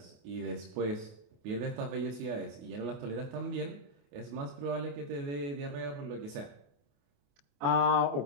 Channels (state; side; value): late; left; 28 ms